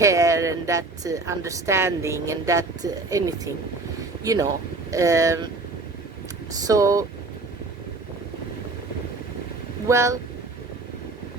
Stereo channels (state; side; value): quieter; left; 3.4 dB